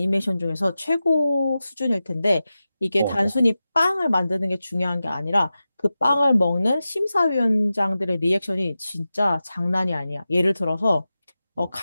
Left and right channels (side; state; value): both; inverted; correlation -0.94